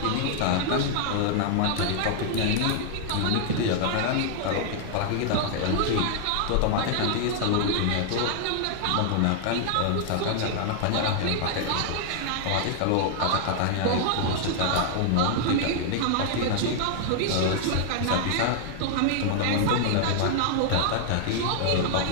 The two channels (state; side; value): different; both; correlation -0.01